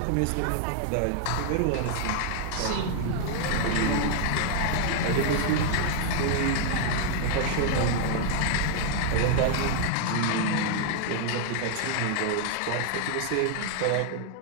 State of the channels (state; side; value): different; both; correlation 0.00